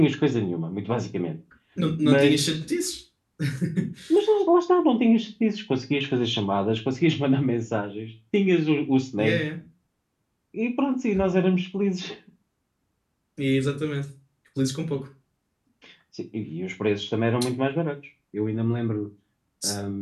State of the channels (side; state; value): both; identical; correlation 1.00